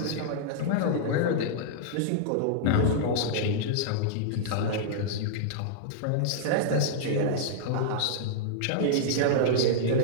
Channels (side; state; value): both; different; correlation -0.02